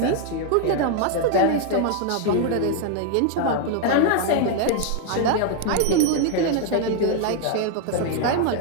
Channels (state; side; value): different; both; correlation 0.00